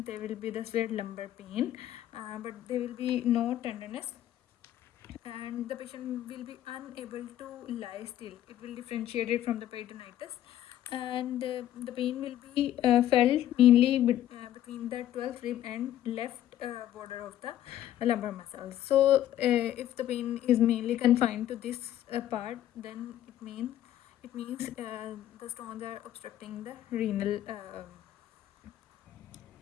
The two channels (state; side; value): quieter; right; 12.3 dB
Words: there will be the severe lumbar pain, but there will be no tenderness, and the patient will be unable to lie still. It will differentiate it from the peritonitis, and the pain will be felt mainly between the 12th rib and left border of the lumbar muscles. So if the pain is mainly confined to this part, then it means the stones are obstructing the renal